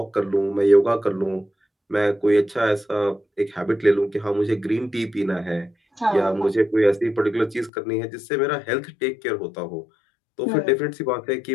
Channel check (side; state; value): right; drops out; at 7.7 s